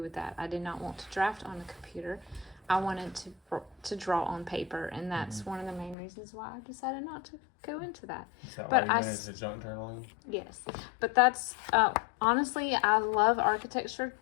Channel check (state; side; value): drops out; right; at 6.0 s